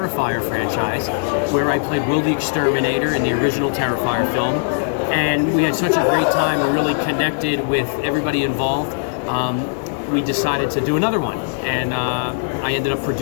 franchise, where I played Will the Exterminator in the original Terrifier film. And we had such a great time. We really connected with everybody involved. We decided to do another one, and I ended up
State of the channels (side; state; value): right; silent; digital silence